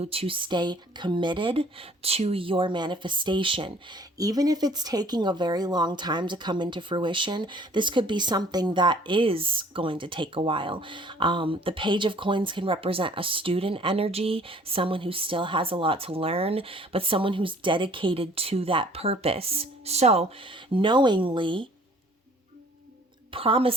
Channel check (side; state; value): both; normal; correlation 0.55